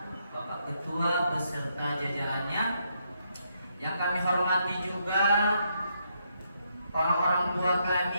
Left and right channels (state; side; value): inverted; both; correlation -0.77